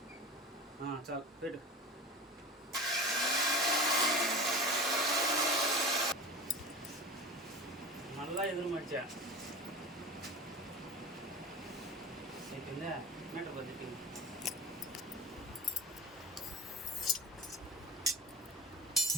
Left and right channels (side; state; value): both; normal; correlation 0.32